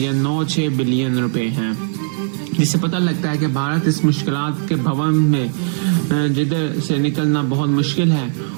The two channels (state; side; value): silent; left; 64 dB below the other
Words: بلین روپے ہیں. جس سے پتہ لگتا ہے کہ بھارت اس مشکلات کے بھون میں جدھر سے نکلنا بہت مشکل ہے،